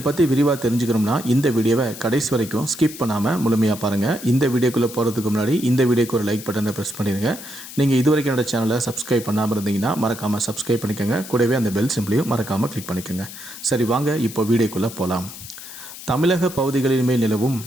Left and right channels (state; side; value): noise; left; hiss, 13 dB below the sound